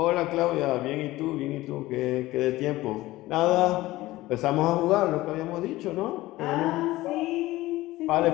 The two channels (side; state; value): right; quieter; 17.7 dB